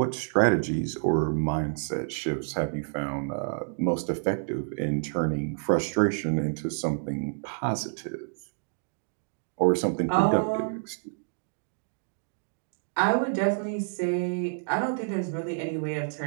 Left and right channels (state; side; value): silent; left; digital silence